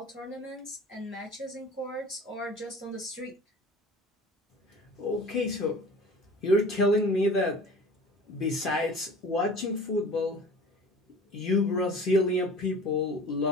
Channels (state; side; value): normal; both; correlation 0.42